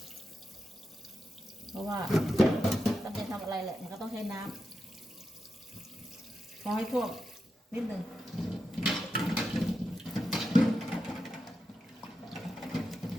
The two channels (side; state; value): both; normal; correlation 0.88